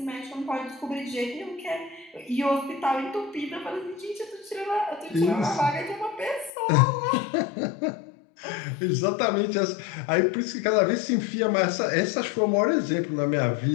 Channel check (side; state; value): right; drops out; at 6.5 s